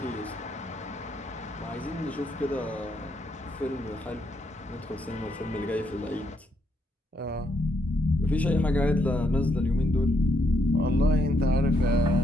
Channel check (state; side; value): normal; both; correlation 0.75